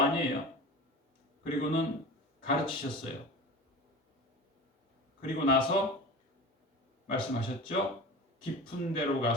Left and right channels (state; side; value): normal; both; correlation 0.33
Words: 그리고는 가르치셨어요. 그리고 나서 말씀하셨죠. 깊은 데로